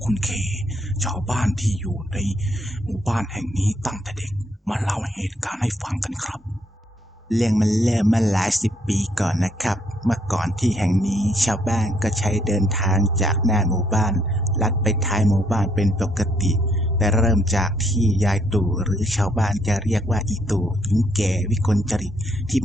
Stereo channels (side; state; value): both; normal; correlation 0.71